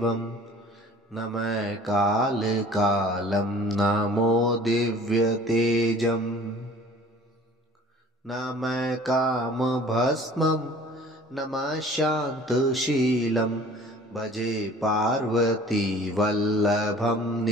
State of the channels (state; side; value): normal; both; correlation 0.49